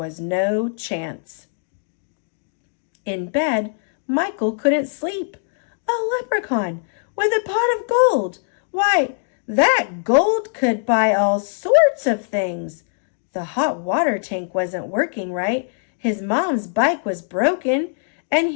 no chance. In bed, Michael couldn't sleep. A leprechaun with a pot of gold! Why, that gold could buy all sorts of things. The hot water tank wasn't working right, his mom's bike was broken, and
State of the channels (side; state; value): right; silent; digital silence